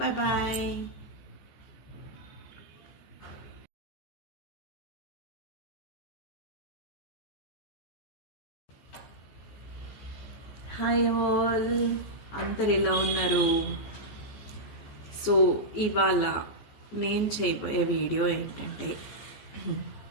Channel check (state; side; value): late; right; 14 ms